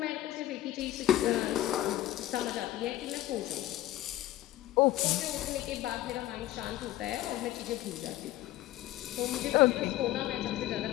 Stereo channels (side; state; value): right; quieter; 14.8 dB